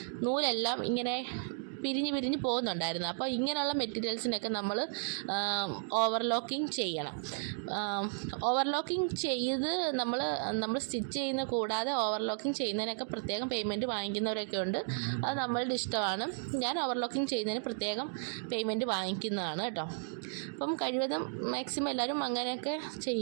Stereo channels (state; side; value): silent; left; digital silence